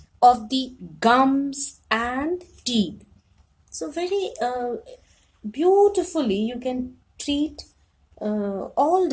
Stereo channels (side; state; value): both; identical; correlation 1.00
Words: of the gums and teeth. So very beautifully you can treat all